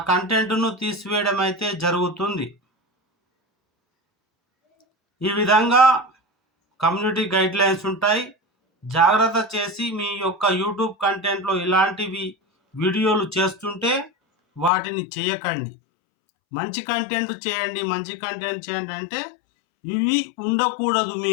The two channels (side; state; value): right; drops out; at 14.7 s